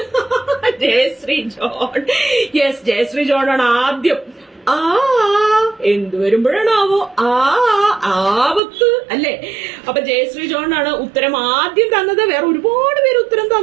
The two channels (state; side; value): drops out; left; at 8.6 s